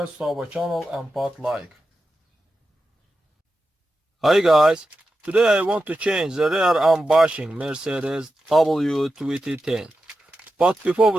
to our channel and put like. Hi guys, today I want to change the rear arm bushing Mercedes W210. But before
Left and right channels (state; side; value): normal; both; correlation 0.91